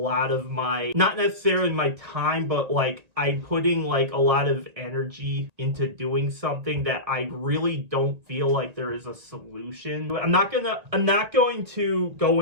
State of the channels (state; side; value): late; left; 1.9 ms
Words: of my, not necessarily my time, but like I'm putting like a lot of energy into doing something that I really don't feel like there is a solution. I'm not going to go